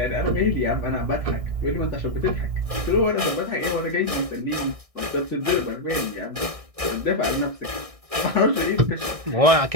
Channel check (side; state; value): left; late; 1.6 ms